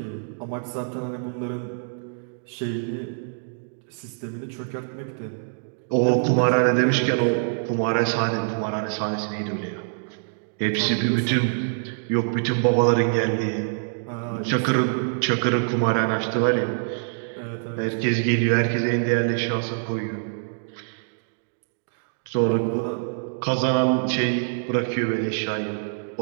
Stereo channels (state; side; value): silent; left; digital silence